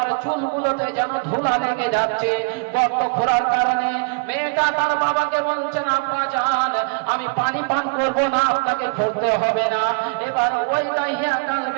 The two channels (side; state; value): left; quieter; 39.1 dB